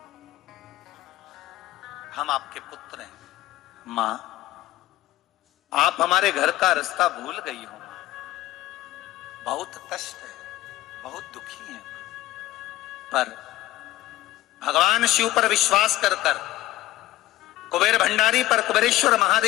हम आपके पुत्र हैं। मां, आप हमारे घर का रास्ता भूल गई हो। बहुत कष्ट है, बहुत दुखी है, पर भगवान शिव पर विश्वास कर कर, कुबेर भंडारी पर, कुबेरेश्वर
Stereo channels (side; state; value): right; quieter; 16.2 dB